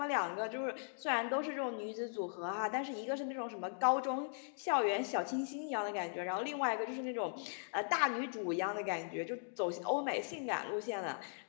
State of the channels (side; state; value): right; silent; digital silence